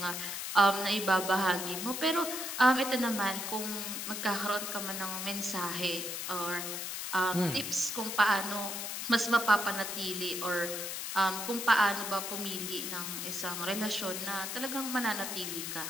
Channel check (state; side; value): noise; left; hiss, 4 dB below the sound